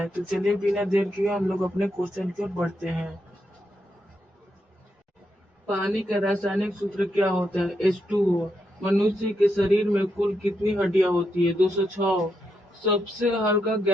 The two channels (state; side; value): normal; both; correlation 0.82